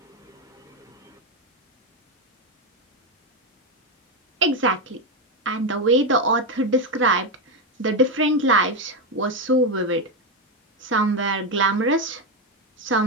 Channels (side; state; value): both; normal; correlation 0.09